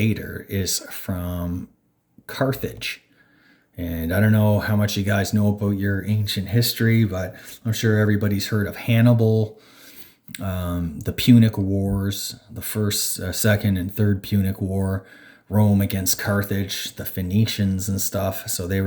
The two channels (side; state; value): both; identical; correlation 1.00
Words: is from Carthage. And I don't know how much you guys know about your ancient history, but I'm sure everybody's heard of Hannibal, the Punic Wars, the first, second, and third Punic War, Rome against Carthage, the Phoenicians and stuff. So they